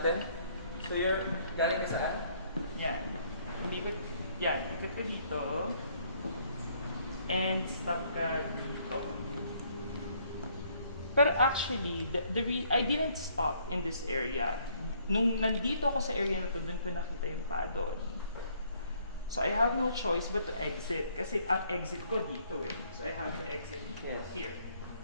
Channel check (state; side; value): inverted; both; correlation -0.65